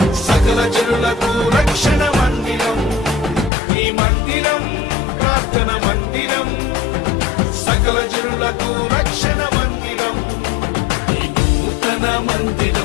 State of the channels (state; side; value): drops out; right; at 3.5 s